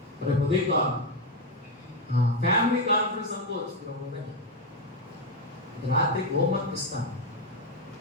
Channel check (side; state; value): both; normal; correlation 0.07